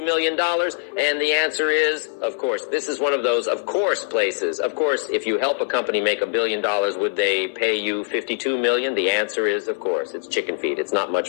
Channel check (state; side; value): silent; right; digital silence